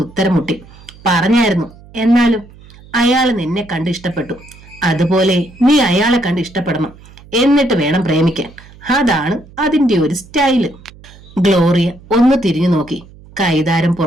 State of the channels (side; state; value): right; noise; hum, 22 dB below the sound